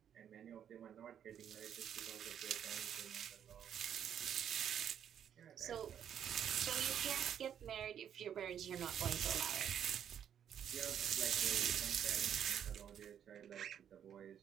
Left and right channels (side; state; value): left; quieter; 9.2 dB